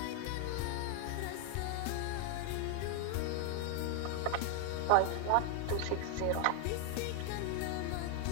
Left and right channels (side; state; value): both; different; correlation 0.01